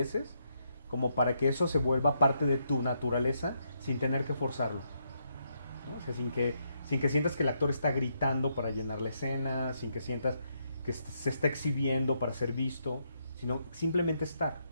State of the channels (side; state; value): both; inverted; correlation -0.78